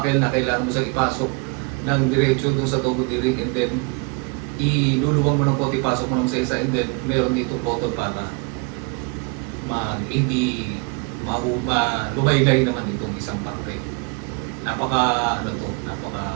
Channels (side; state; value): left; quieter; 31.7 dB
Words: na kailangan mo siyang ipasok ng diretso doon sa double D ring and then iluluwang mo ng konti, pasok mo ng sa isa and then meron dito button para hindi lumaylay naman itong isang parte. Napaka